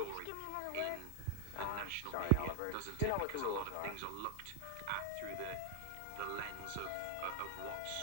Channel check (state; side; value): different; both; correlation 0.00